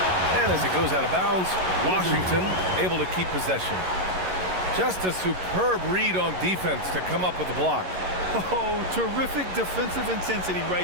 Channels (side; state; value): left; late; 11 ms